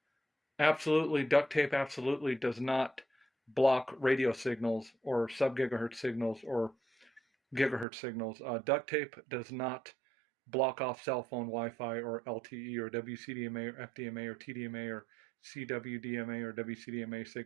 duct tape absolutely does not block radio signals or sub-gigahertz signals or gigahertz signals. Duct tape does not block off cell phone Wi-Fi or LTE or WCDMA or FDMA or TDMA or CWDMA or WCDMA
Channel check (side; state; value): left; drops out; at 7.9 s